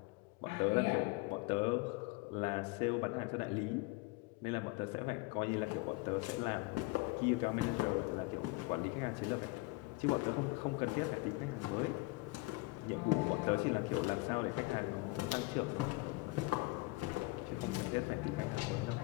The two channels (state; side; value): quieter; right; 23.0 dB